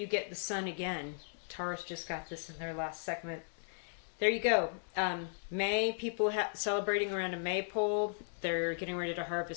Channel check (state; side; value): silent; right; 54 dB below the other